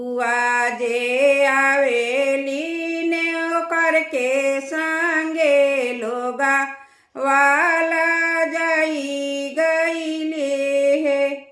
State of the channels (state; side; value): identical; both; correlation 1.00